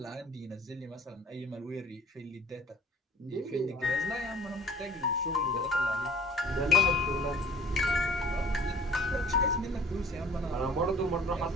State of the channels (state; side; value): normal; both; correlation 0.50